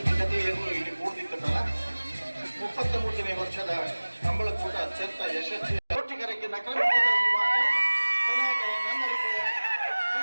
ಇಲ್ಲಿ ಕೂಡಿದ್ದಲ್ಲ 33ನೇ ವರ್ಷದ ಕಂಬಳಕೂಟ ಅತ್ಯಂತ ಯಶಸ್ವಿ ಕೋಟಿಗರಿಗೆ ನಕಲ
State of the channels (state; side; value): inverted; both; correlation -1.00